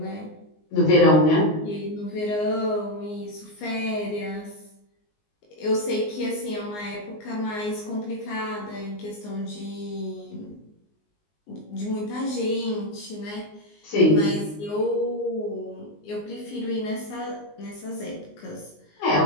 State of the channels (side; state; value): right; late; 19 ms